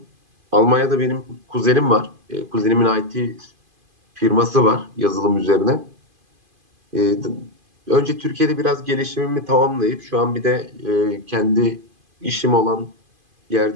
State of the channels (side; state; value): left; late; 2.5 ms